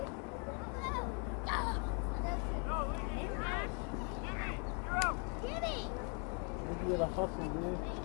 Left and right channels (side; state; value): right; quieter; 38.4 dB